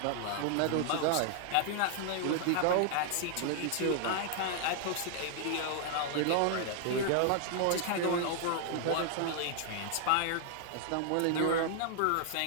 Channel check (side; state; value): both; different; correlation 0.00